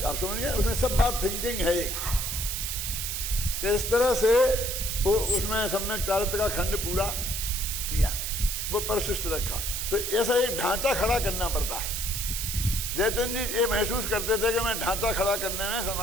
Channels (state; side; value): noise; right; hiss, 3 dB below the sound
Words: आप समझ गए? उसमें सब बात थिंकिंग है एक कि इस तरह से वो उसमें सम्यक चारित्र का खंड पूरा किया, वो परिशिष्ट रखा। तो ऐसा एक ढांचा खड़ा करना पड़ता है। जयचंद जी ये महसूस करते थे कि मैं ढांचा खड़ा करने में